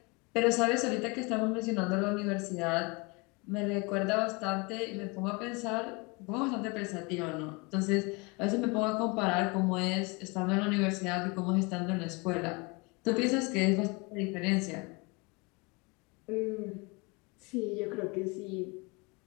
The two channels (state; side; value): quieter; right; 28.1 dB